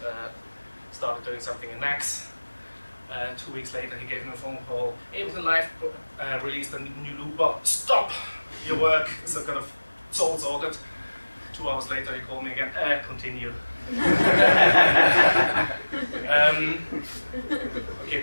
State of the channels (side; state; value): both; inverted; correlation -1.00